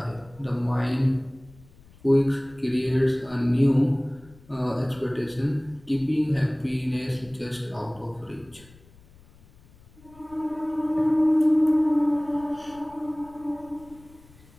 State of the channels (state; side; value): noise; left; rumble, 26 dB below the sound